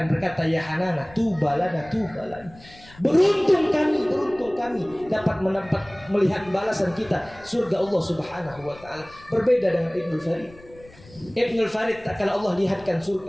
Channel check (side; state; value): left; noise; rumble, 23 dB below the sound